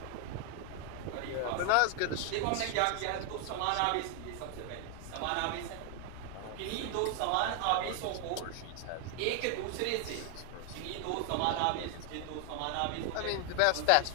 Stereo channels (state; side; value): different; both; correlation 0.00